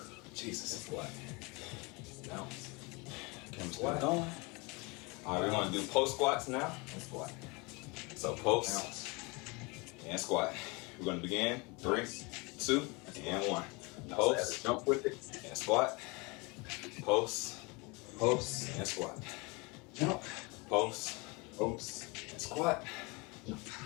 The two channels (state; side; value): quieter; right; 27.7 dB